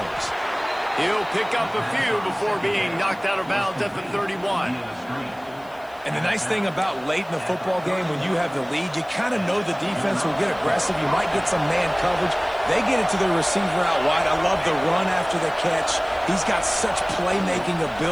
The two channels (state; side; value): noise; left; hiss, 28 dB below the sound